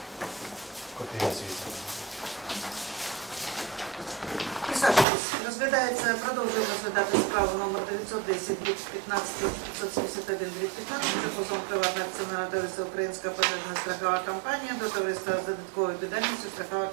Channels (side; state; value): left; drops out; at 5.1 s